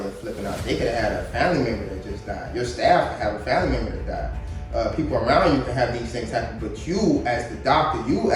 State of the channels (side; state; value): both; identical; correlation 1.00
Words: flipping out. They could have had a family member that just died. Your staff could have a family member that died. People around you can have these things happen, but you as the doctor, you